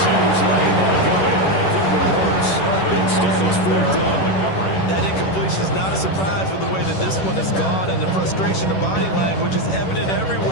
he was letting that go. It could have been worse. Instead, it's 4th down. is not a surprise with the way that this one has gone, and the frustration of body language is evident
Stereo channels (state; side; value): late; right; 11 ms